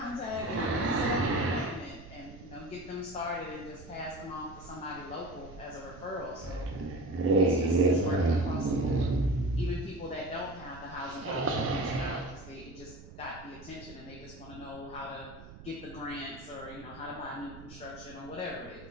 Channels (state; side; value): noise; right; rumble, 16 dB below the sound